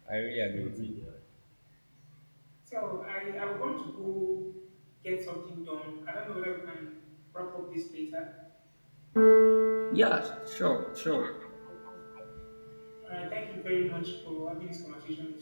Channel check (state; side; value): inverted; both; correlation -1.00